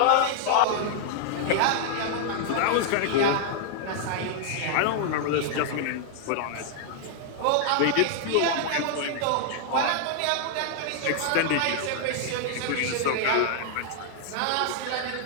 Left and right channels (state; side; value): different; both; correlation -0.01